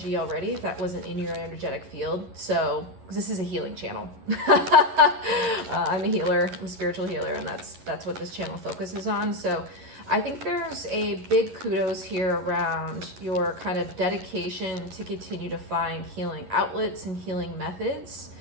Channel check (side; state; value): left; late; 11 ms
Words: already, if that wasn't in your energetic field. So, because this is a healing channel. I'm a healer, I'm a spiritual healer, and that's what this channel focuses on. So, I think there's a big kudos here around your kind of dedication to continue to find healing outlets and healing methods,